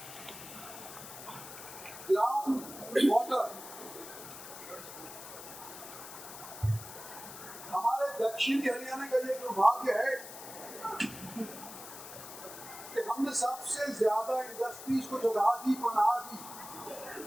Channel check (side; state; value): left; noise; hiss, 13 dB below the sound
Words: ग्राउंड वाटर, हमारे दक्षिणी हरियाणा का ये दुर्भाग्य है कि हमने सबसे ज्यादा इंडस्ट्रीज को जगह दी, पनाह दी।